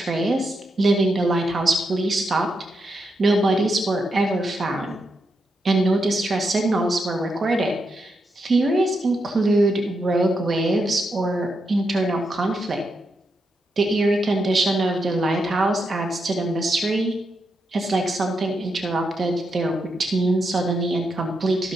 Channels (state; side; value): normal; both; correlation 0.83